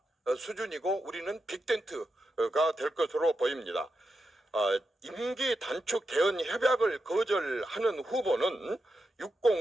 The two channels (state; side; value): normal; both; correlation 0.87